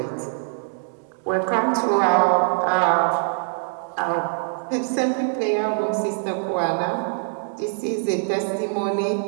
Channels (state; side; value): silent; left; digital silence